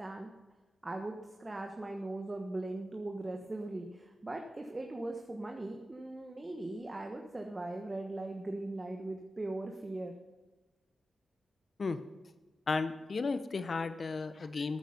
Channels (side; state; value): both; normal; correlation 0.92